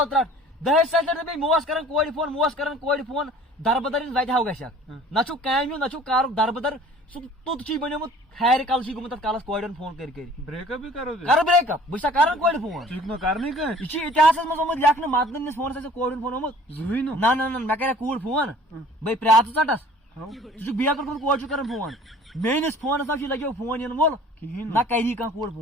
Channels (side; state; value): both; normal; correlation 0.49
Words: ترٹ دہش سیلر بی موس کران کوڑ فون دربدر وتہ ہاو گژھک نہ چھُ کامہِ نہ چھُ کارُک دربدر سُہ توٚت چھی بنیومُت ہارِ کل چھی گوٚمُت تتھ کالس کورٮ۪ن فون کر بریک اپ بھی کرو کر بریک اپ بہٕ چھُسا کران کورِ فون ژٕ نہٕ کرنٕے کانٛہہ یہ چھُ اتحاسس منٛز آمُت لیکھنہٕ مدنہٕ نِس فونس آسہِ کورِ ہُنٛد فون آمُت زٕہٕنۍ نہٕ نہ مےٚ کرے کوٗر فون بے پرٛاژٕ ژٹس ژٕ چھُکھ بیکر کوٚرمُت کورِ چھُ کران فون میٲنِس فونس نہ چھُ لگیو فون ینہٕ وول کِہیٖنۍ نہ کری کانٛہہ کوٗر